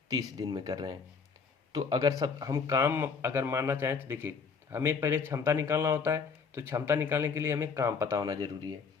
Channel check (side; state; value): right; quieter; 5.5 dB